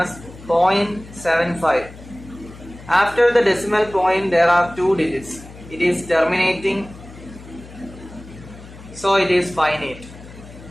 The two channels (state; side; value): noise; left; hum, 17 dB below the sound